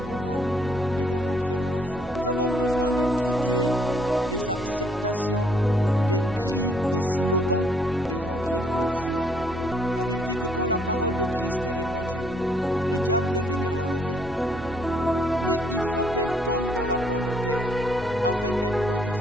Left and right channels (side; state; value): both; normal; correlation 0.68